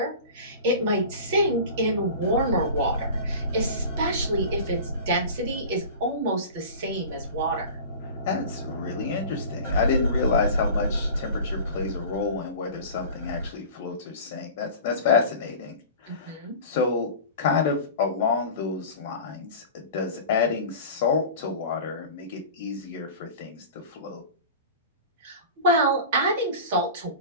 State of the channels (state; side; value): inverted; both; correlation -0.36